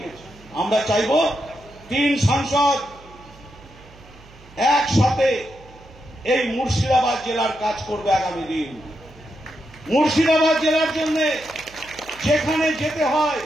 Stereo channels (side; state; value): right; noise; hum, 23 dB below the sound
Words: আমরা চাইব 3 সাংসদ একসাথে এই মুর্শিদাবাদ জেলার কাজ করবে আগামী দিন। মুর্শিদাবাদ জেলার জন্য যেখানে যেতে হয়